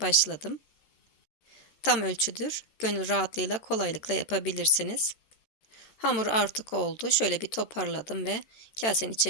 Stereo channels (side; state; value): right; late; 13 ms